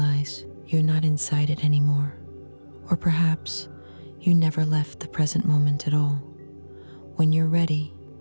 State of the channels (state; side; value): inverted; both; correlation -1.00